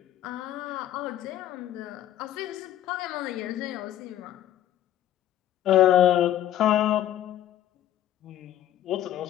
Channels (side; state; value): right; quieter; 12.3 dB